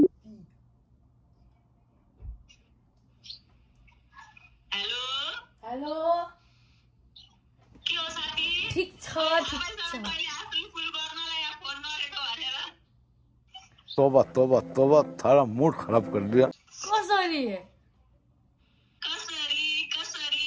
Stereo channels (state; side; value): identical; both; correlation 1.00